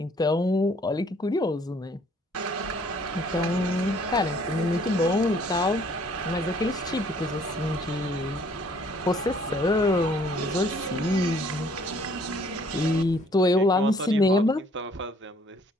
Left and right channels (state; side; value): normal; both; correlation 0.61